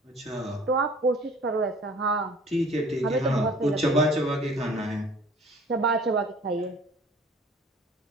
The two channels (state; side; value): normal; both; correlation 0.49